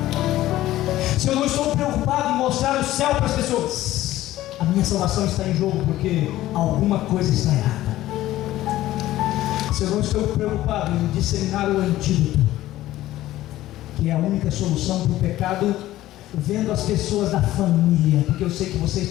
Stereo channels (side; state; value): right; quieter; 15.1 dB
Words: Se eu não estou preocupado em mostrar o céu para as pessoas, a minha salvação está em jogo, porque alguma coisa está errada. Se eu não estou preocupado em disseminar o antídoto, que é a única solução para o pecado, vendo as pessoas da família, porque eu sei que vocês